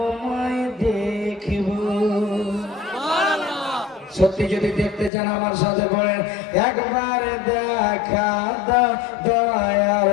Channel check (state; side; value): drops out; right; at 5.1 s